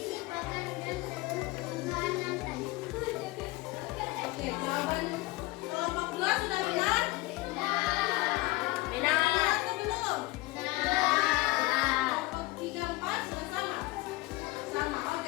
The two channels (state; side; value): quieter; right; 20.4 dB